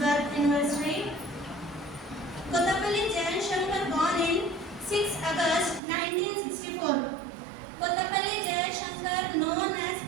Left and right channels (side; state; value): left; drops out; at 5.8 s